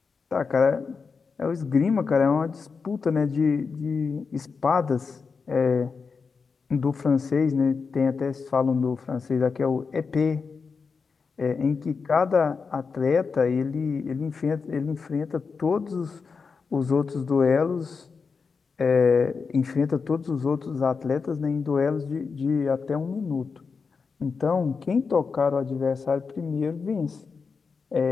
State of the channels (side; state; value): right; quieter; 5.1 dB